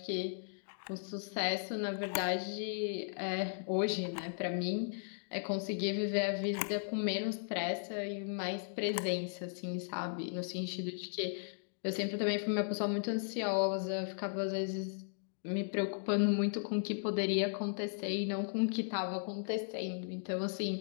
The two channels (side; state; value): right; silent; digital silence